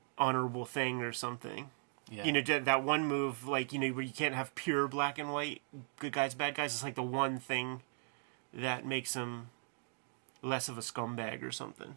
honorable thing or something. Yeah. That one move, like, where you can't have pure black and white, good guys, bad guys. It's like the one thing that makes him less of a scumbag or something.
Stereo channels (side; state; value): left; silent; 52 dB below the other